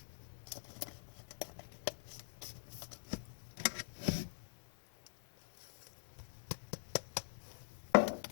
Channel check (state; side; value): silent; right; digital silence